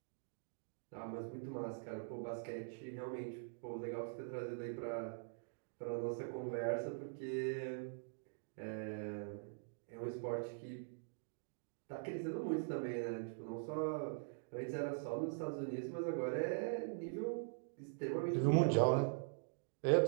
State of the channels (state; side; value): silent; left; digital silence